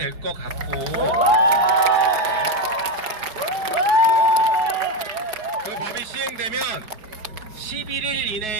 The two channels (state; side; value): late; left; 4.8 ms